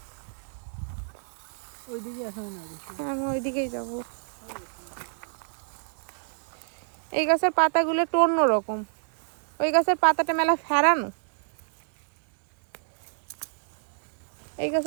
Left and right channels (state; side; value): silent; left; 59 dB below the other